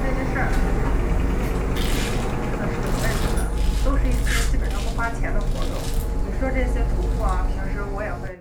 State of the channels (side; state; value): both; identical; correlation 1.00